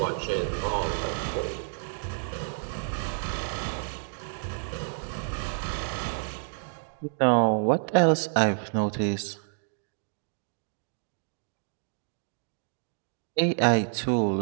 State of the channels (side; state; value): left; silent; digital silence